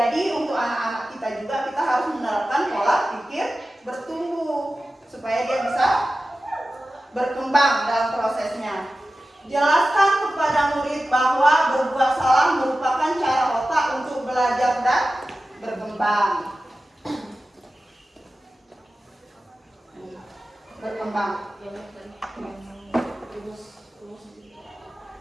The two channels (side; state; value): both; normal; correlation 0.94